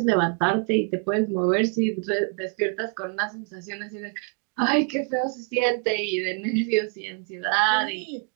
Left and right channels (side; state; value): left; quieter; 36.5 dB